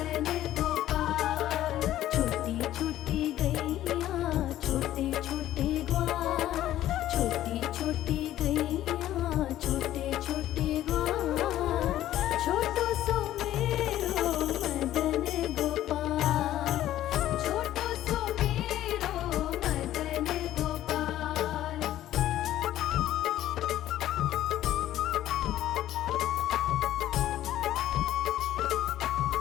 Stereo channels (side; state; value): right; quieter; 13.2 dB